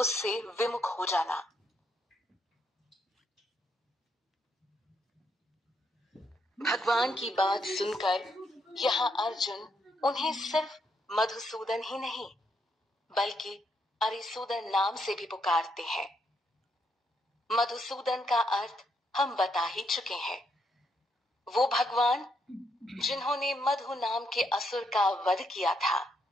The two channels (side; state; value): both; normal; correlation 0.76